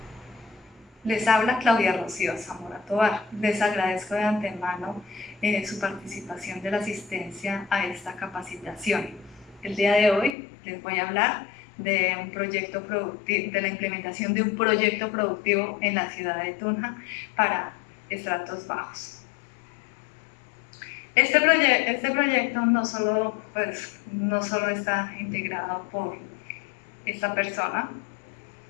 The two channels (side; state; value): right; drops out; at 10.4 s